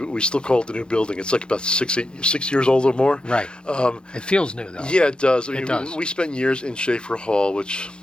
we still call it the new building. It's like about 6 years old or more. Right. It feels new, though. Yeah, it does. It does. We spent years in Schaefer Hall, which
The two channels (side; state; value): right; late; 0.050 ms